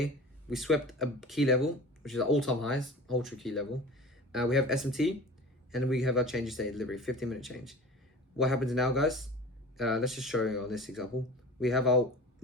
We swept a key level, which is our all-time highs, ultra key level. We have SMT, and then we have our change of state delivery, 15-minute change. What happens now, guys? Let's just show you on this example. We have our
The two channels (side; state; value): both; normal; correlation 0.38